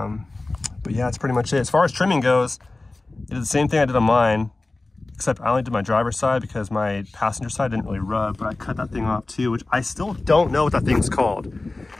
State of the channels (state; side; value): quieter; right; 3.1 dB